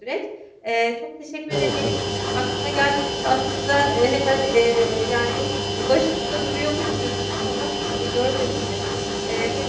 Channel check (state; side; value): identical; both; correlation 1.00